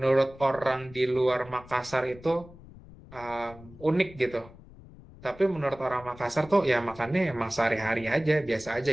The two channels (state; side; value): noise; left; rumble, 20 dB below the sound